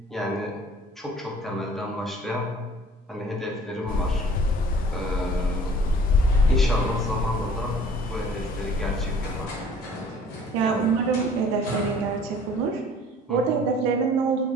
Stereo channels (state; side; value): normal; both; correlation 0.51